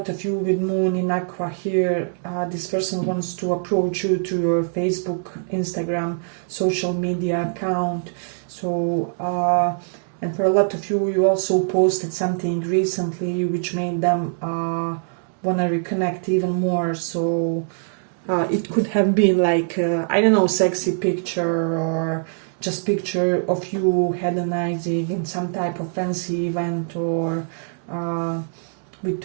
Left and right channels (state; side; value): silent; left; digital silence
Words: of you with Moon in Aqua here, this person wants to approach you to your Facebook, Instagram, social media account. So and for a lot of you, you also posted something recently which made them want to reconnect even more. So it could have been like I don't know, sexy picture, or just picture of you hedonizing in some type of fancy event, or with